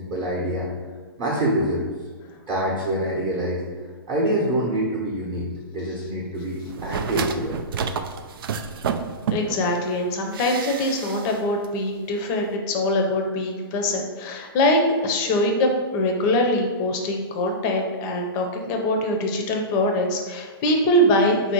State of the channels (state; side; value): normal; both; correlation -0.17